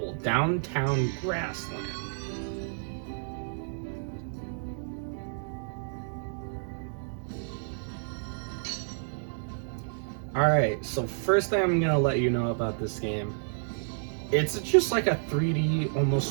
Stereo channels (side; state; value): left; silent; digital silence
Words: Downtown Grassland. Alright, so first thing I'm gonna let you know about this game, it's just like a 3D, almost